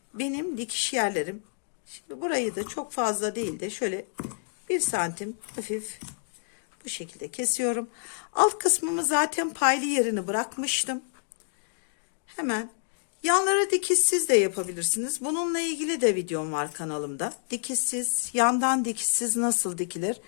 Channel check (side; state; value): right; silent; digital silence